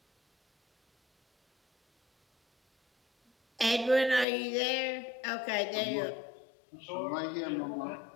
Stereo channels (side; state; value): right; drops out; at 4.2 s